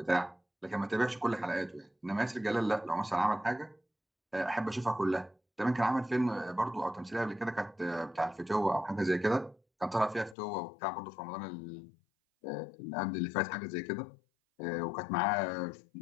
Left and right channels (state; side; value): drops out; right; at 10.4 s